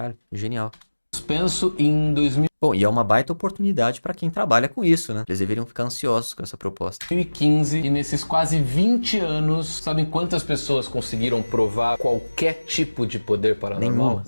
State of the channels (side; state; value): both; inverted; correlation -1.00